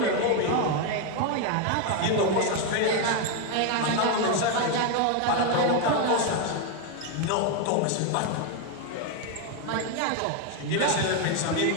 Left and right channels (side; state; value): both; different; correlation 0.01